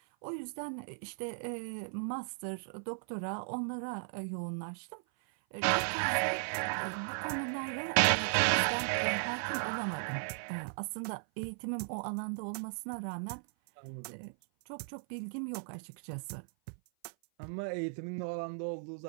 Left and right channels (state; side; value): silent; left; 53 dB below the other